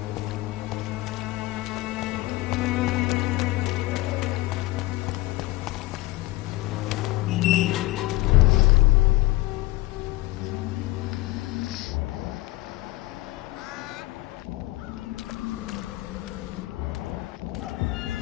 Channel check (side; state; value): right; quieter; 18.8 dB